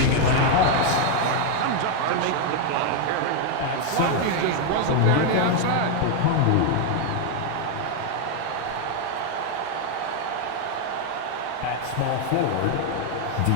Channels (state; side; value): different; both; correlation 0.01